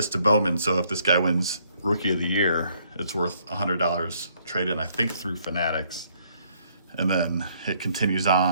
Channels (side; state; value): both; inverted; correlation -0.67